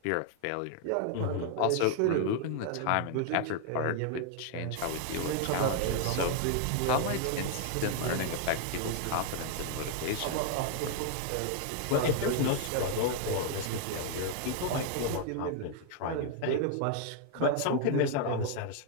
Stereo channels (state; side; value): different; both; correlation 0.00